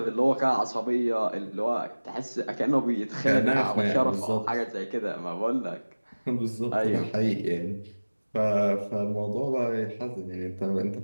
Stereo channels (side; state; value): both; inverted; correlation -1.00